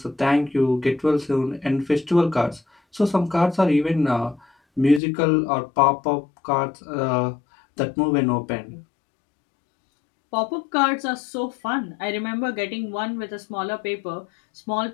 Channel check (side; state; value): right; drops out; at 5.0 s